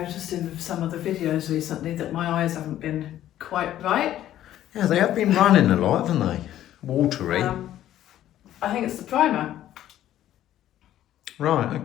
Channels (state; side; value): quieter; right; 12.5 dB